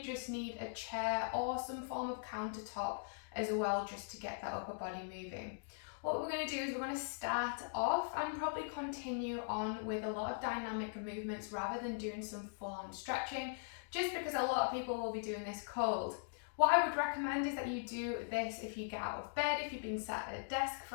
just need a chair or some form of countertop as well, just to get that upper body moving. What we're going to do is we're going to start off and probably continue on with a lot of dynamic movements rather than doing some full-on stretching, just because a lot of people will be doing this cold. What I would recommend is that you do this if you get out of bed, if you've been sat at a desk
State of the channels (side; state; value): right; silent; digital silence